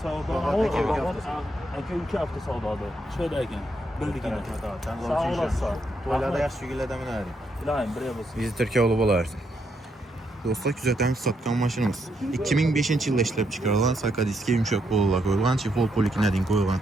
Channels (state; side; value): normal; both; correlation 0.78